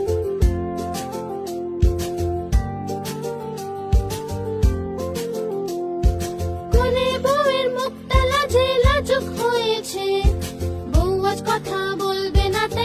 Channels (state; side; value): identical; both; correlation 1.00